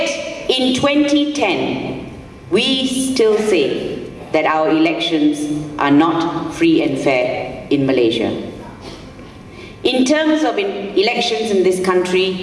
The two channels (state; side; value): identical; both; correlation 1.00